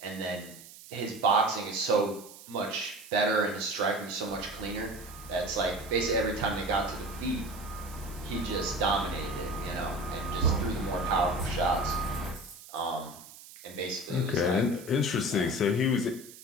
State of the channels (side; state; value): right; noise; hiss, 18 dB below the sound